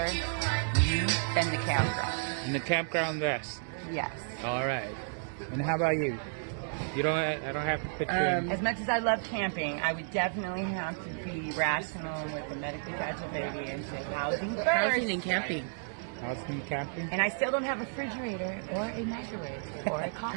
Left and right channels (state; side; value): silent; left; digital silence